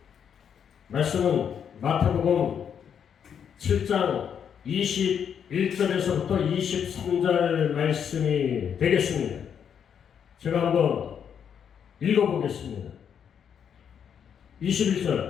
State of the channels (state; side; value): quieter; right; 8.0 dB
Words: 마태복음 7장 21절에서부터 23절 말씀이 되겠습니다. 제가 한번 읽어보겠습니다.